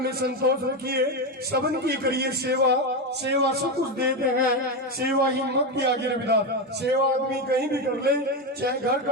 में संतोष रखिए, सबन की करिए सेवा, सेवा सब कुछ देते हैं, सेवा ही मत की आगे रविदास। सेवा आदमी कहीं भी कर ले, चाहे घर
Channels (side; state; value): both; normal; correlation 0.12